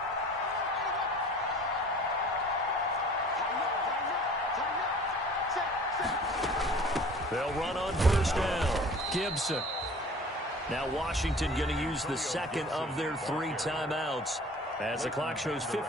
They'll run on first down. Gibson. Now Washington going to use the second of their 3 timeouts as the clock shows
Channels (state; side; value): normal; both; correlation 0.46